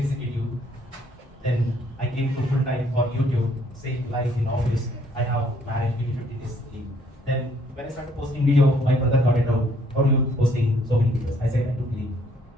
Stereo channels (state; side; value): normal; both; correlation 0.65